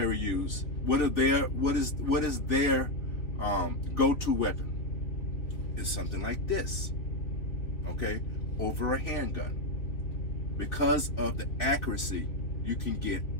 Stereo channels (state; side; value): late; right; 3.5 ms